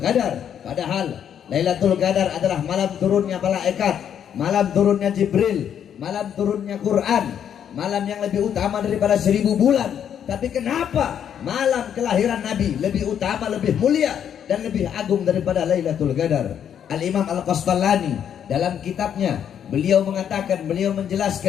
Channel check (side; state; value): right; quieter; 9.0 dB